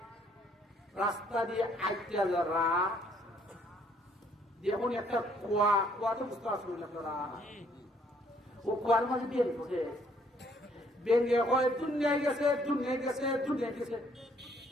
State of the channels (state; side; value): normal; both; correlation 0.65